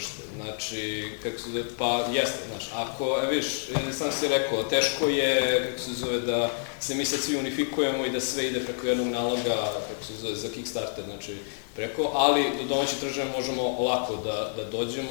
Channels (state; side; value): silent; right; digital silence